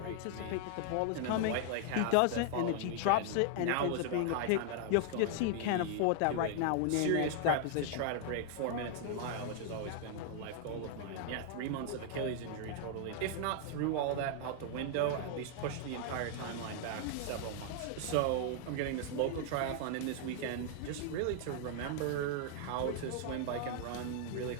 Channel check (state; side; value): different; both; correlation 0.00